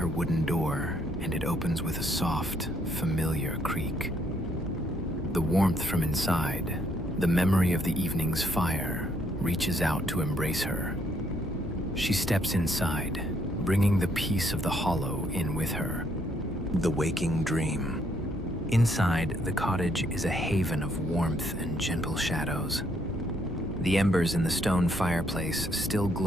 wooden door, and it opens with a soft, familiar creak. The warmth from inside, the memory of the evening's fire, reaches out to embrace her. She steps inside, bringing the peace of the hollow in with her. The waking dream. Inside, the cottage is a haven of warmth and gentle shadows. The embers in the stone fireplace still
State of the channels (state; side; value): normal; both; correlation 0.70